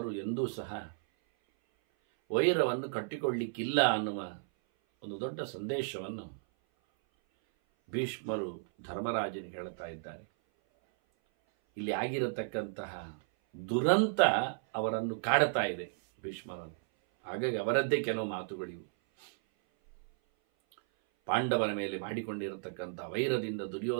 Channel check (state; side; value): silent; left; 55 dB below the other